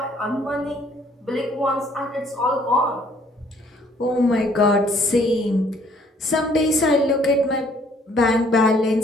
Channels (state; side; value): normal; both; correlation 0.61